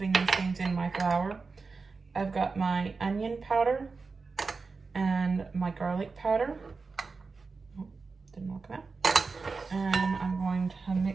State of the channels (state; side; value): quieter; left; 4.4 dB